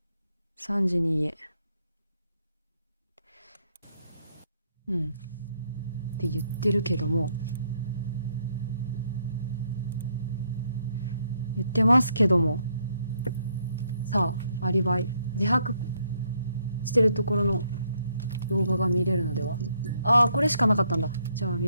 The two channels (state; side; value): inverted; both; correlation -0.72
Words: 家。って言ってるけども、言ってますけども、さあアリバイ自白してるところの動画が見れるのでは。ああ、これしかなかったんだ。じゃあ見